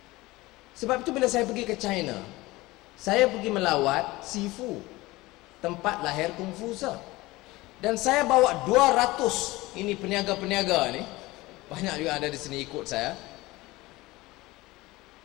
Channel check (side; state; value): right; quieter; 20.1 dB